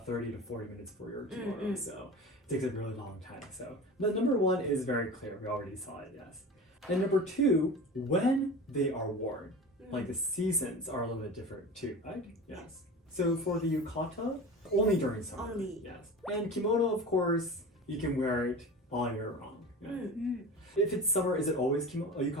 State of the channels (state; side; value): normal; both; correlation 0.33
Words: 30 to 40 minutes for your kimono, so it takes a really long time. So, but number 1 is very clear. We already saw it, yes. And number 2, when they are worn, like the seasons are a little bit different too, right? Yes. So for the yukata, only during summer. Only. Yes. And kimono, of course, you can wear it all year round. Yes. If it's summer, is it always